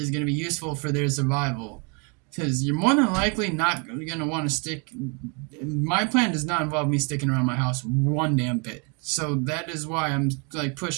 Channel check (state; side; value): quieter; left; 34.2 dB